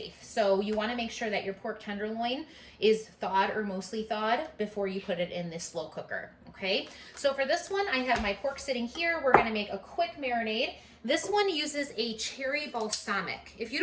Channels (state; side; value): identical; both; correlation 1.00